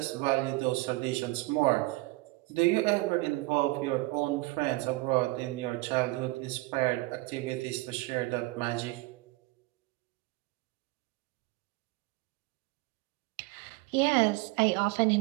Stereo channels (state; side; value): quieter; left; 22.1 dB